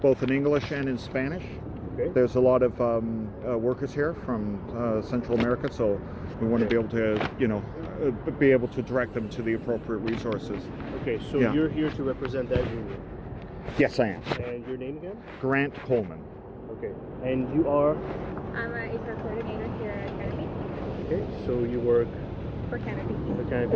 in English and in Spanish. Okay. There's a lot of workers here from Central America, so we want to be able to, be able to direct them to the appropriate resources. Okay, so you're here to represent that union. Yes, I am. And your name again? Grant Coleman. Okay. And you are? I'm an HR coordinator here at Canopy. Okay, so you work For Canopy. for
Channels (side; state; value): both; identical; correlation 1.00